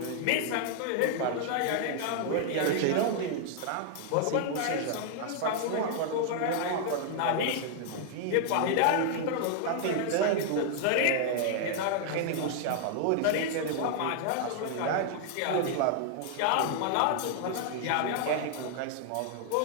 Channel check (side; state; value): both; different; correlation 0.00